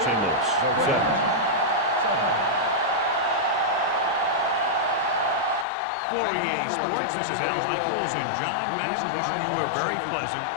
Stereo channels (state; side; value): drops out; right; at 5.7 s